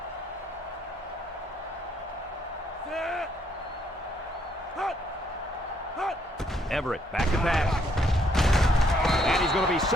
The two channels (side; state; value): both; normal; correlation 0.70